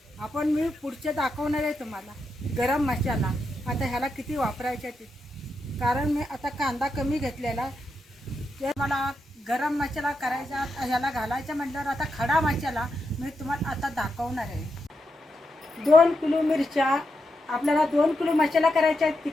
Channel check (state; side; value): normal; both; correlation 0.85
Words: मी पुढचे दाखवणार आहे तुम्हाला गरम मसाला. आता ह्याला किती वापरायचं ते, कारण मी आता कांदा कमी घेतलेला, ते मला गरम मसाला करायचा ह्याला घालायचा म्हटल्यावर आता खडा मसाला मी तुम्हाला आता दाखवणार आहे. 2 किलो मिरच्या, आपल्याला 2 किलो मसाला करायचा आहे